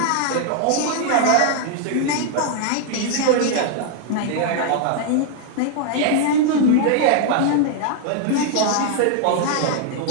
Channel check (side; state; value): both; different; correlation 0.00